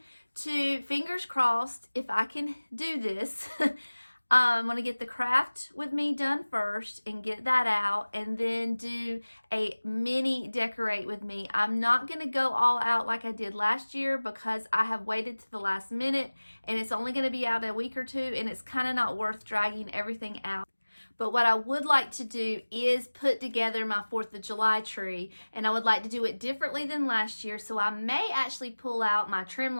to, fingers crossed, if I can do this, I'm going to get the craft with me done first and get that out, and then do a mini decorate with me. I'm not going to go all out like I did last year because I have waited to the last minute and it's only going to be out a week or two, and it's kind of not worth dragging everything out. But what I would like to do is put together my 4th of July tree, and I would like to do it differently than last year. So I may actually pull out my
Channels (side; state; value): both; inverted; correlation -1.00